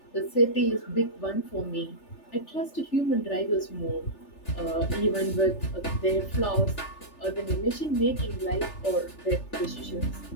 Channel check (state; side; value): late; right; 3.4 ms